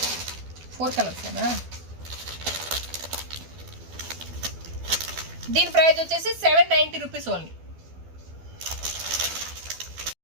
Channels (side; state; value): left; late; 12 ms